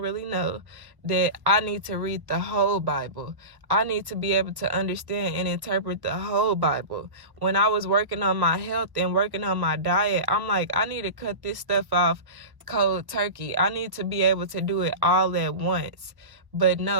really know, that I need to read the whole Bible. I need to be able to understand and interpret the whole Bible. When I was working on my health and working on my diet, I'm like, I need to cut this stuff off cold turkey. I need to be able to do it all at once. But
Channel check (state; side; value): late; left; 1.2 ms